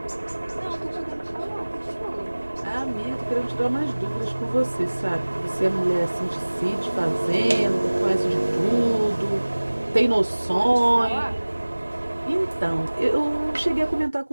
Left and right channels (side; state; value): both; inverted; correlation -1.00